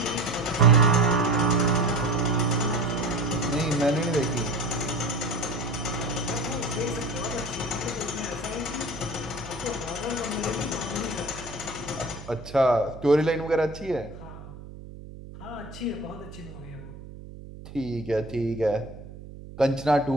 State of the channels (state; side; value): noise; right; hum, 14 dB below the sound